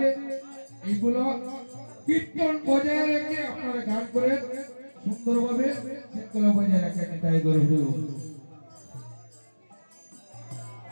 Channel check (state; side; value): inverted; both; correlation -1.00